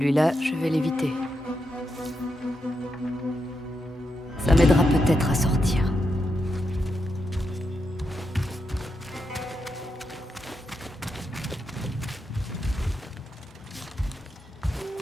je vais l'éviter. Ça m'aidera peut-être à sortir.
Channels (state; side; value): normal; both; correlation 0.85